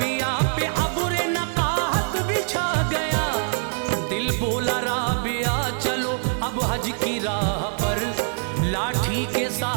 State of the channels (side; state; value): left; silent; 63 dB below the other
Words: पे अबुरे नकाहत बिछा गया। दिल बोला राबिया चलो अब हज की राह पर, लाठी के